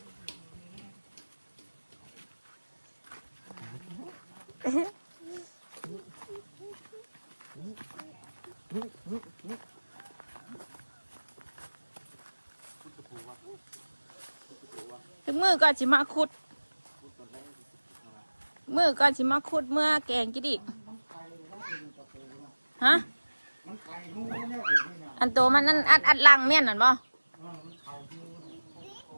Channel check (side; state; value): both; inverted; correlation -1.00